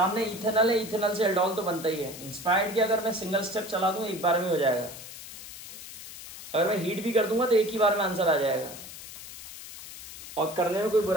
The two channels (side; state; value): left; noise; hiss, 13 dB below the sound